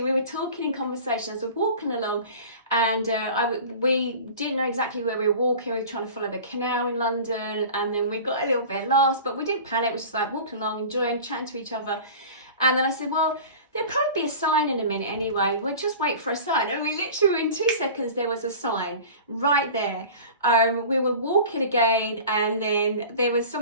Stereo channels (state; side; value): inverted; both; correlation -0.38